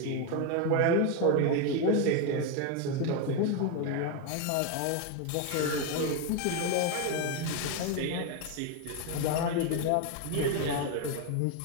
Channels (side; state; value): both; different; correlation 0.02